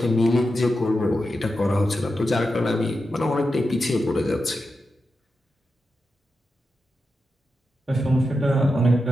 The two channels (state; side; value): normal; both; correlation 0.89